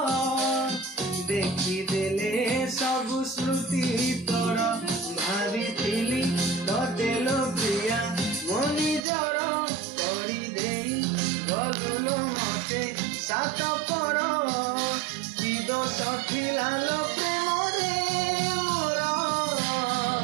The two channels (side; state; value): left; drops out; at 9.0 s